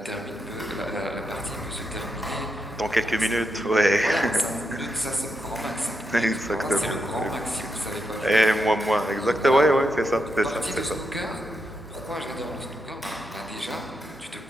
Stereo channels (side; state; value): both; normal; correlation 0.83